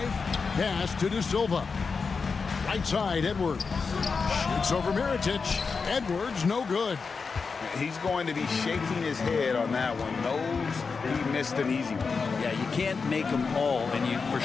pass to De Silva. Right side, Edwards. Shoots over Mirotic. Edwards, no good. He's going to be shaking his head on that one. Knows he missed an easy one. Yeah, you can't make them all, and you for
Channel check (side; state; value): right; quieter; 5.0 dB